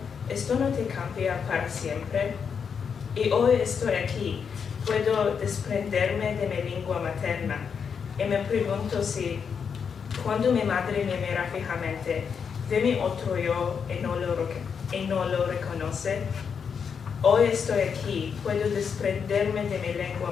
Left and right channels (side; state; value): right; quieter; 6.6 dB